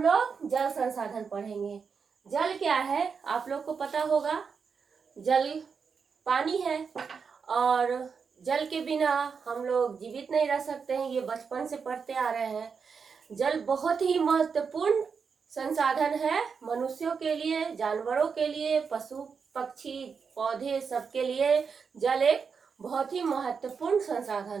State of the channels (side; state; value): left; quieter; 5.8 dB